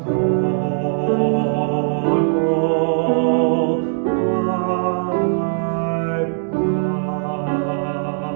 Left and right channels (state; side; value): silent; left; digital silence